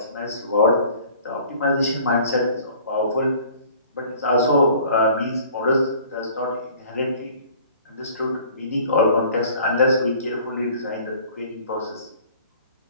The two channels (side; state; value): both; inverted; correlation -0.50